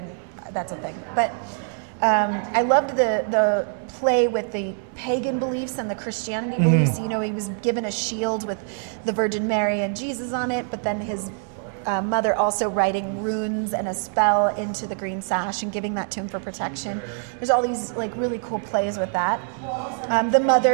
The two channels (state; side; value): silent; left; 60 dB below the other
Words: that's a thing. But I loved the play with the pagan beliefs and the Christianity beliefs. He was given a shield with the Virgin Mary and Jesus on it, but then his mother also writing runes and a spell into the green sash and giving that to him for protection. There's all these like really cool plays with that. The